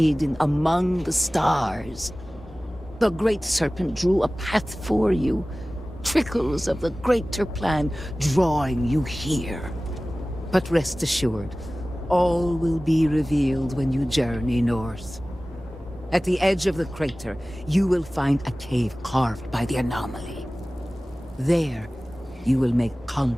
among the stars. The Great Serpent drew a path for you, trickles of the greater plan drawing you here. But rest assured, all will be revealed when you journey north. At the edge of the crater, you will find a cave carved by the anomaly. There, you will make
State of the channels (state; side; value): normal; both; correlation 0.97